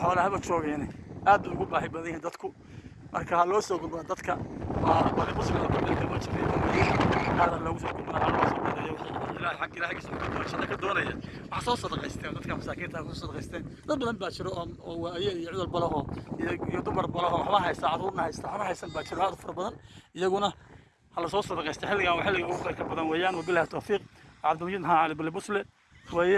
xoolaha joogeen aad ugu baahi badan yihiin dadku marka loo soo gudbo dadka waa muslim oo kale dama jiray hada lagu soo gudbo loo soo gudbo ilaahay xaq ilaahay soo gudbo shaqo ka doonaya wax soo sadaqaysteen dadka masaakiinta ku sadaqaysteen dad badan baa jiro oo waayay iyo cudul balaho iyo dumar balaho waxba haysta caruurna haysta waxba haysan baa jiro aad far badan iyaguna هلا صوص صدق يستحلق أو حلق أو خير كبدان ويان وبالله التوفيق عبد المجيد ها على بالبوصلة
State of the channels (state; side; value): identical; both; correlation 1.00